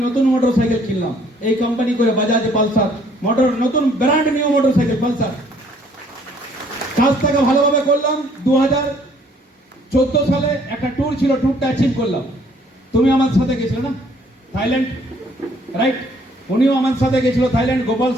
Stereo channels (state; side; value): normal; both; correlation 0.62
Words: নতুন মোটরসাইকেল কিনলাম, এই কোম্পানি করে বাজাজ পালসার নতুন ব্র্যান্ড নিউ মোটরসাইকেল পালসার। কাজটাকে ভালোভাবে করলাম। 2014 সালে একটা ট্যুর ছিল, ট্যুরটা অ্যাচিভ করলাম। তুমি আমার সাথে গেছিলে না থাইল্যান্ড, রাইট? উনিও আমার সাথে গেছিল থাইল্যান্ড, গোপাল